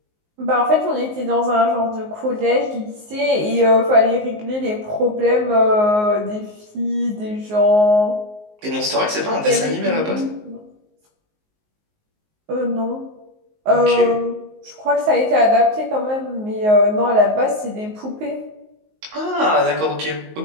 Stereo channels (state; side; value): late; left; 19 ms